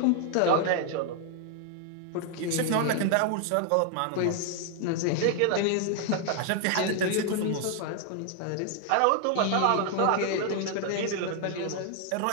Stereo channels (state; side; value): different; both; correlation 0.00